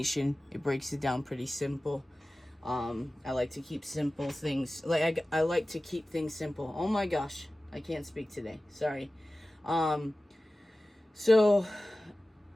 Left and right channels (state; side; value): normal; both; correlation 0.96